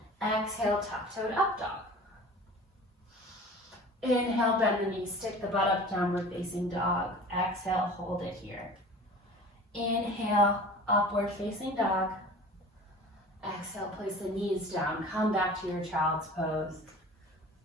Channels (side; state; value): both; normal; correlation 0.41